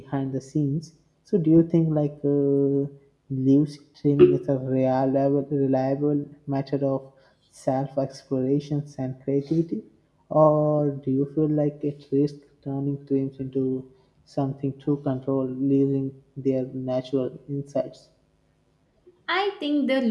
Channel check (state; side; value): identical; both; correlation 1.00